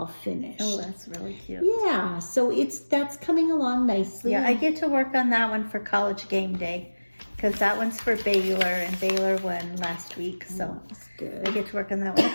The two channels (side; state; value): both; inverted; correlation -1.00